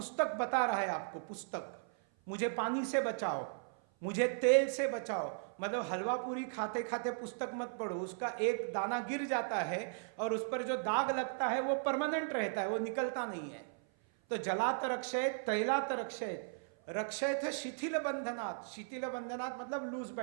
बता रहा है आपको, पुस्तक, मुझे पानी से बचाओ, मुझे तेल से बचाओ। मतलब हलवा पूरी खाते खाते पुस्तक मत पढ़ो, उसका एक दाना गिर जाता है और उस पर जो दाग लगता है वो परमानेंट रहता है, वो निकलता नहीं है। तो जलात रक्षेत तैलात रक्षेत रक्षेत शिथिल बंधनात्। शिथिल बंधनात् मतलब लूज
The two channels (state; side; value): silent; left; 53 dB below the other